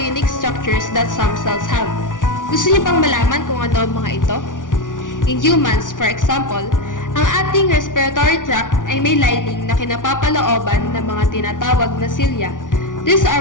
unique structures that some cells have. Gusto niyo bang malaman kung ano ang mga ito? In humans, for example, ang ating respiratory tract ay may lining na kinapapalooban ng mga tinatawag na cilia. These are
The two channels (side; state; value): right; late; 0.88 ms